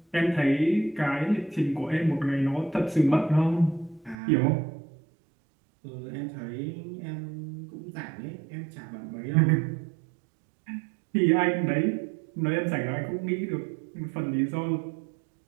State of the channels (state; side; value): drops out; left; at 4.2 s